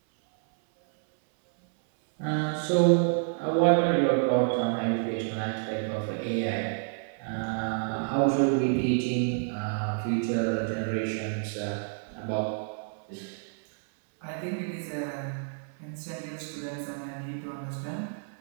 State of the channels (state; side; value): silent; left; 57 dB below the other